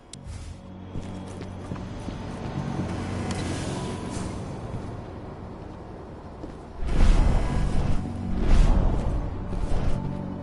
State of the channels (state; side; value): identical; both; correlation 1.00